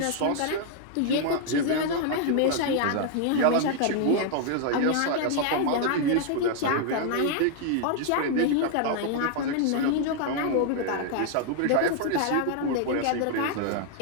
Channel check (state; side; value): different; both; correlation 0.00